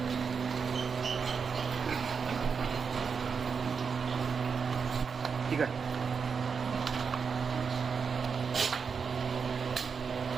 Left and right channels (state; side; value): quieter; left; 5.8 dB